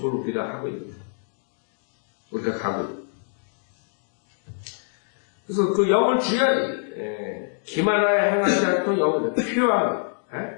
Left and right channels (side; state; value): right; silent; digital silence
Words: 우리가 하고 있는 거예요. 우리가 가고 있는 거예요. 그래서 그 영을 주야지. 기만하여 행하지 않고 영을 퓨어한,